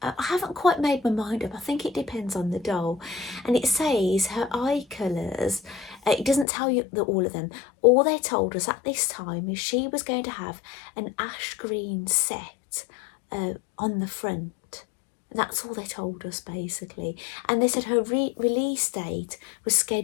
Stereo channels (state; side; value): drops out; right; at 6.5 s